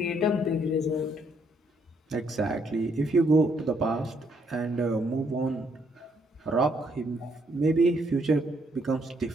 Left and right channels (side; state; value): both; normal; correlation 0.71